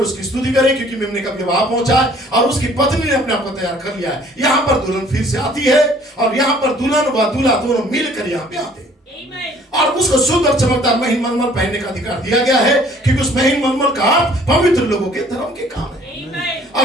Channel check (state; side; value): normal; both; correlation 0.56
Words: स्तुति करें, क्योंकि मेमने का विवाह पहुंचा है और उसकी पत्नी ने अपने आप को तैयार कर लिया है। यहाँ पर दुल्हन फिर से आती है और यहाँ पर दुल्हन व दूल्हा दोनों मिलकर यहाँ पे आते हैं और उसको शुद्ध और चमकदार महीन मलमल पहनने का अधिकार दिया गया है, क्योंकि उस महीन मलमल का अर्थ पवित्र लोगों के धर्म के काम है।